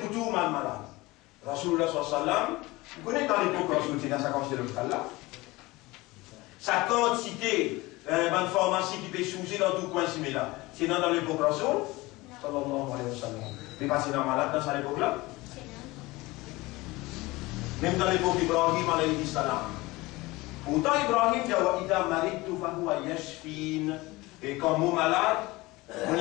tout malade. Rasoul sallam. Vous connaissez dans l'époque où c'est dans sa quantité de là. Sa quantité de pharmacie qui peut changer dans tout coin similaire. C'est dans l'époque Rasoul. Sallallahu alayhi wa sallam. Mais pas c'est dans malade dans cette époque-là. Même dans l'époque d'Ibrahim alayhi salam. Pourtant Ibrahim dit wa idha maridtu fa huwa yashfin. Et quand mon malade, Mon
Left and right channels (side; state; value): right; quieter; 21.3 dB